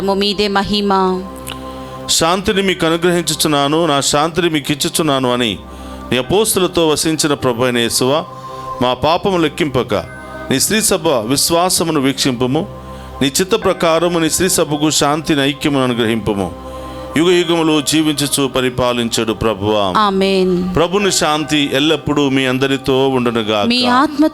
మీదే మహిమ. శాంతిని మీకు అనుగ్రహించుచున్నాను, నా శాంతిని మీకు ఇచ్చుచున్నాను అని నీ అపోస్తులతో వసించిన ప్రభు అయిన యేసువా, మా పాపము లెక్కింపక నీ శ్రీ సభ విశ్వాసమును వీక్షింపుము. నీ చిత్త ప్రకారము నీ శ్రీ సభకు శాంతిని, ఐక్యమును అనుగ్రహింపుము. యుగ యుగములు జీవించుచు పరిపాలించడు ప్రభువా. ఆమేన్. ప్రభుని శాంతి ఎల్లప్పుడూ మీ అందరితో ఉండునుగాక, మీ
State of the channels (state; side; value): identical; both; correlation 1.00